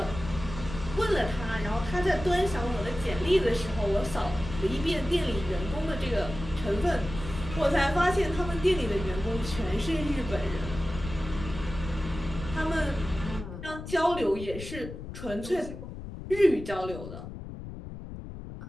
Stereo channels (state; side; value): noise; left; rumble, 10 dB below the sound